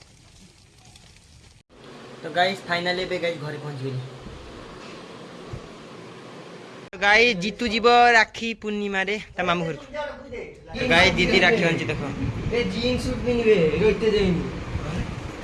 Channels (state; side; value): identical; both; correlation 1.00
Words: तो गाइस फाइनली बे गाइस घरे पहुंच गेली तो गाइस जीतू जीव राखी पूर्णिमा रे ता मामू घर तो गाइस दीदी राखी आनची देखो ए जीन्स सूट पिनबे रोइते जाइनी